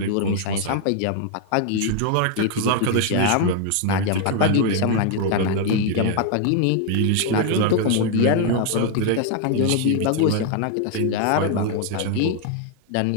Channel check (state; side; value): different; both; correlation 0.00